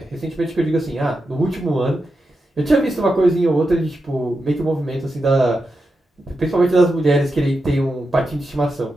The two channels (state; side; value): normal; both; correlation 0.88